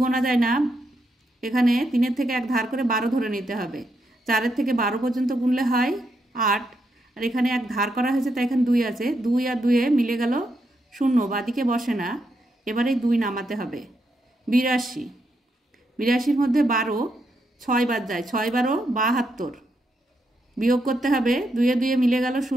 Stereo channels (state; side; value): normal; both; correlation 0.81